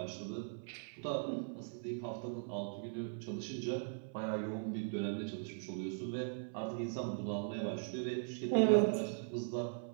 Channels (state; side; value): silent; left; 51 dB below the other